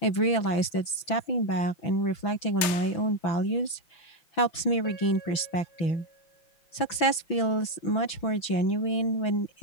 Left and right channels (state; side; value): late; right; 6.0 ms